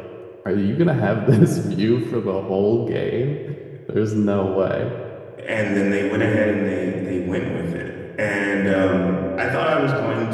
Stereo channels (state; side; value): identical; both; correlation 1.00